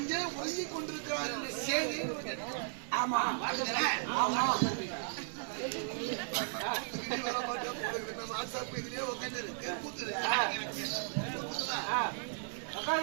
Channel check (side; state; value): left; silent; 54 dB below the other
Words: ஒழுங்கிக் கொண்டிருக்கிறார் என்ற செய்தி. ஆமா இதுலயே